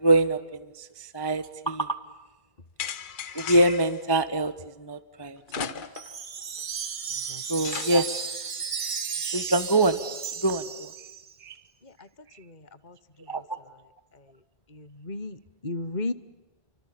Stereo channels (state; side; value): late; right; 1.5 ms